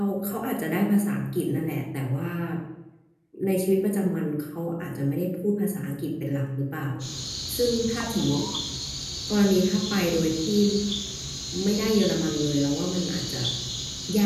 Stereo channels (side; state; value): both; identical; correlation 1.00